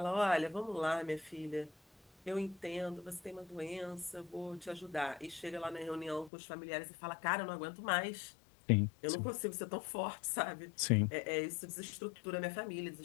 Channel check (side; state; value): right; drops out; at 6.3 s